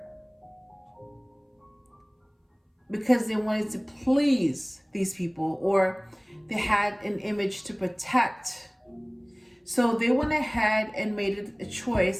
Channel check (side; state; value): both; identical; correlation 1.00